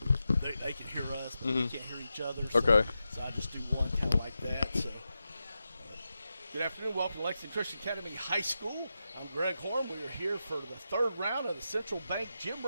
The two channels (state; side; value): inverted; both; correlation -0.90